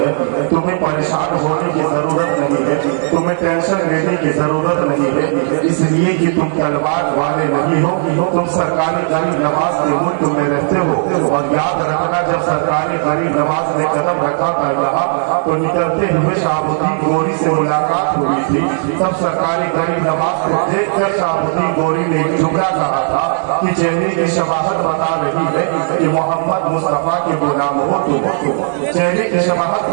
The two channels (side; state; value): left; silent; digital silence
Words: تمہیں پریشان ہونے کی ضرورت نہیں ہے، تمہیں ٹینشن لینے کی ضرورت نہیں ہے. اس لیے کہ تم تلوار والے نہیں ہو، تم سرکاری غریب نواز کے ملک میں رہتے ہو. اور یاد رکھنا جب سرکاری غریب نواز نے قدم رکھا تھا یہاں تو نکلتے ہوئے شاہبدین گوری سے ملاقات ہوئی تھی. تب سرکاری غریب نواز کو دیکھ کر شاہبدین گوری نے جملہ کہا تھا کہ چہرے کی شباہت بتا رہی ہے کہ محمد مصطفیٰ کے غلام ہو تم. چہرے کی شباہت